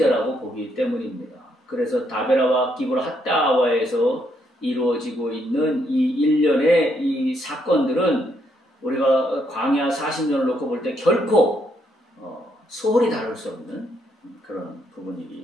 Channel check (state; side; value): normal; both; correlation 0.74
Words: 보기 때문입니다. 그래서 다베라와 기브라 핫다와에서 이루어지고 있는 이 일련의 이 사건들은 우리가 광야 40년을 놓고 볼 때 결코 소홀히 다룰 수 없는 그런